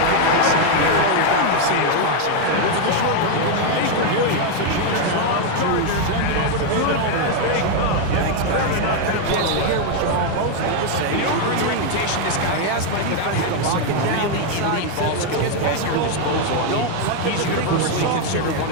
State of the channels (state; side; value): different; both; correlation 0.01